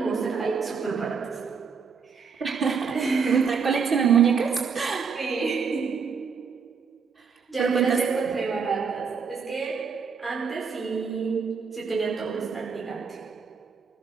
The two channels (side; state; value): left; quieter; 5.8 dB